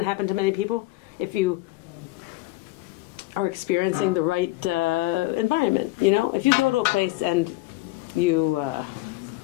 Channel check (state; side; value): quieter; right; 19.3 dB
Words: happen to many people if you are experiencing the right environment. You know, if you go to a place and you,